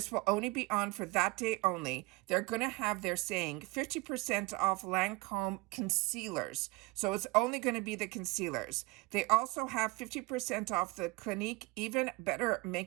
will only be on for that day only, they're going to have, they're saying 50% off Lancome concealers. So it's only going to be the concealers. They also have 50% off the Clinique Even Better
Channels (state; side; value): quieter; left; 23.0 dB